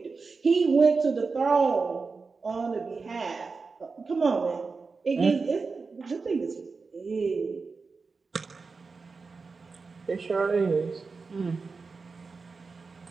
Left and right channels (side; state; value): left; quieter; 4.5 dB